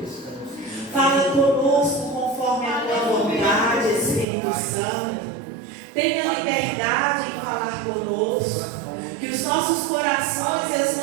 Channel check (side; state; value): left; drops out; at 4.2 s